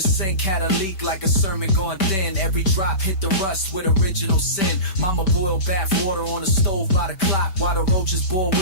had a leak like a sermon gone thin. Every drop hit the rust with original sin. Mama boiled bath water on the stove by the clock, while the roaches bore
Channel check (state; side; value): late; right; 5.3 ms